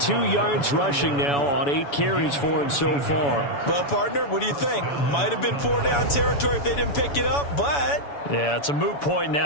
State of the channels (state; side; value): late; right; 7.0 ms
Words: yards rushing now on 8 carries for him so far. Well, partner, what do you think? Might have been 4-down territory if they didn't pick it up, but... Yeah, it's a moot point